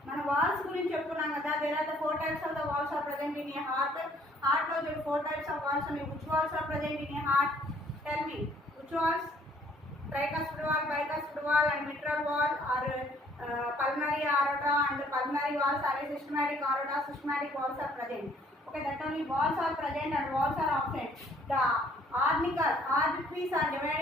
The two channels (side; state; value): both; normal; correlation 0.61